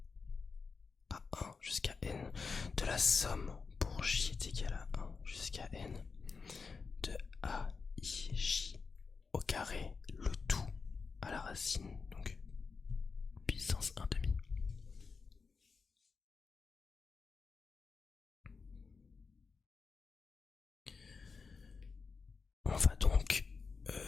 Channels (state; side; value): quieter; right; 4.9 dB